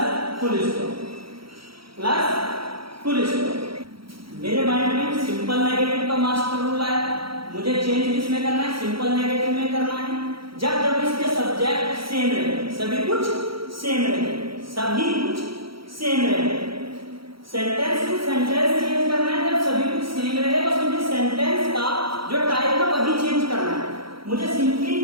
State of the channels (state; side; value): late; left; 0.75 ms